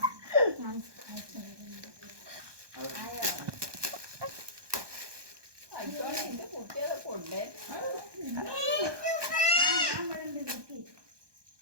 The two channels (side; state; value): left; late; 1.2 ms